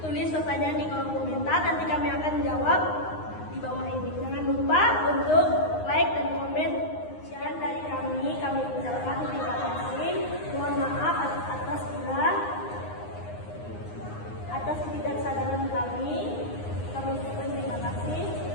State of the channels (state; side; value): late; right; 9.7 ms